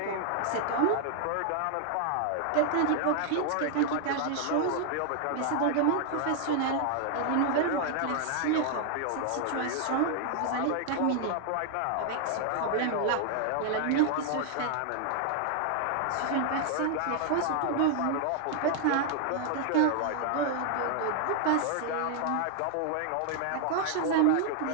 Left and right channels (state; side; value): different; both; correlation 0.00